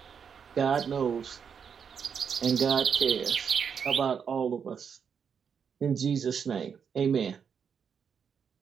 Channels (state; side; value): quieter; left; 6.9 dB